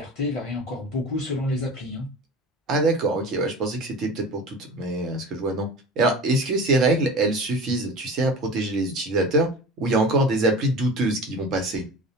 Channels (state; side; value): normal; both; correlation 0.36